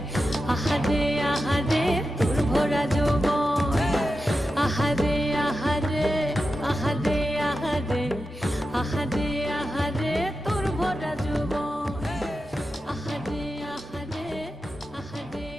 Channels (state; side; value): normal; both; correlation 0.91